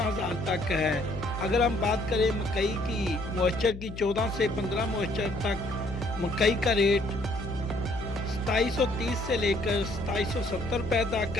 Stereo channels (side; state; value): left; noise; hum, 11 dB below the sound